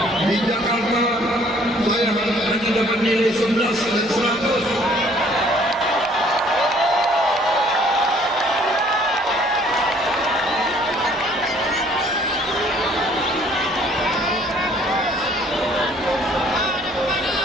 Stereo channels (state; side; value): normal; both; correlation 0.59